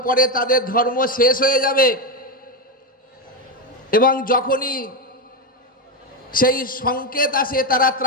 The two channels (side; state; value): both; normal; correlation 0.09